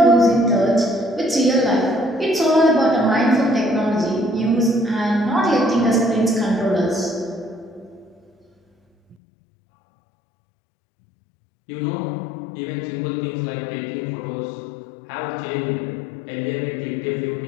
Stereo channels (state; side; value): drops out; right; at 9.2 s